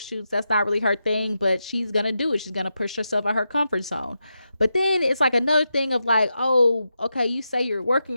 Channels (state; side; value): inverted; both; correlation -0.87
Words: That's not really her thing, but she's gonna do it. She's gonna push herself out her comfort zone. But then it's like another thing of like, oh, okay, you say you're